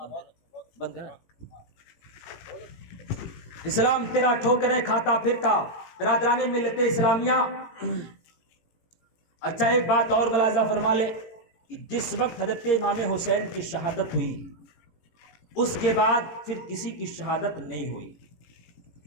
بند کر. اسلام تیرا ٹھوکریں کھاتا پھرتا. برادران ملت اسلامیہ، اچھا ایک بات اور ملاحظہ فرما لے کہ جس وقت حضرت امام حسین کی شہادت ہوئی اس کے بعد پھر کسی کی شہادت نہیں ہوئی.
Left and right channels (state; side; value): late; right; 18 ms